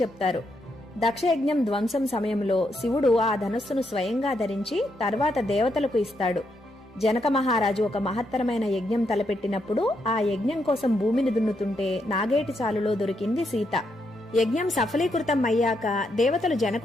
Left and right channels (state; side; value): normal; both; correlation 0.79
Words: చెప్తారు. దక్షయజ్ఞం ధ్వంసం సమయంలో శివుడు ఆ ధనస్సును స్వయంగా ధరించి తర్వాత దేవతలకు ఇస్తాడు. జనక మహారాజు ఒక మహత్తరమైన యజ్ఞం తలపెట్టినప్పుడు ఆ యజ్ఞం కోసం భూమిని దున్నుతుంటే నాగేటి చాలులో దొరికింది సీత. యజ్ఞం సఫలీకృతం అయ్యాక దేవతలు